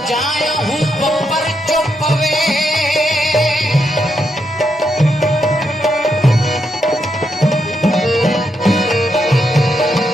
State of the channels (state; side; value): normal; both; correlation 0.80